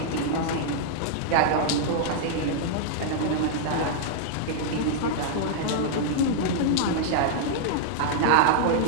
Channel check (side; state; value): both; different; correlation -0.01